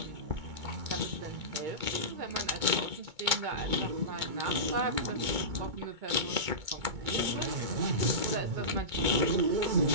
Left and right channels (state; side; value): late; left; 2.2 ms